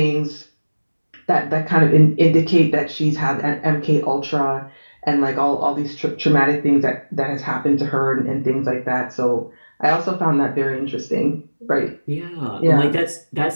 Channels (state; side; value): inverted; both; correlation -1.00